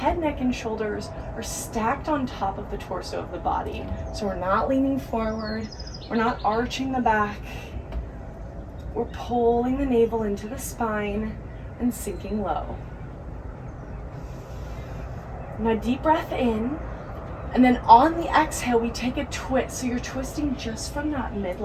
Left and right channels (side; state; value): both; identical; correlation 1.00